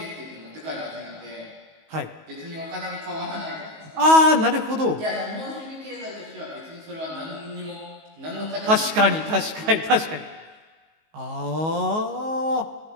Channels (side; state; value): left; late; 19 ms